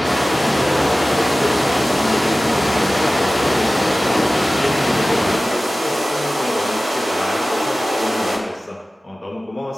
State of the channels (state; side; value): normal; both; correlation 0.97